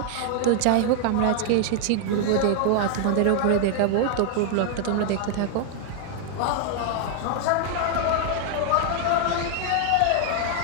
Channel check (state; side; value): different; both; correlation 0.00